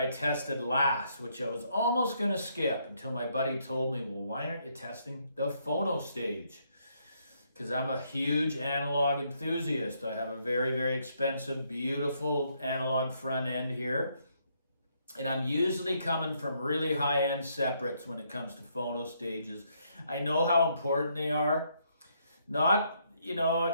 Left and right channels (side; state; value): both; inverted; correlation -0.73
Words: tested last, which I was almost going to skip until my buddy told me, well, why aren't you testing the phono stage? Because I'm a huge analog enthusiast. I have a very, very expensive, beautiful analog front end here. And I'm usually coming from really high-end separates when it comes to phono stages. I know how important they are. Not,